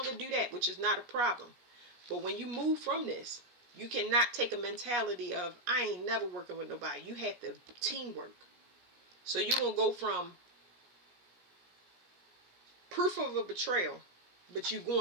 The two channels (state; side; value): late; left; 17 ms